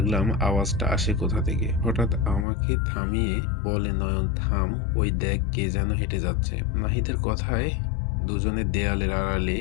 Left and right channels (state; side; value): drops out; right; at 2.5 s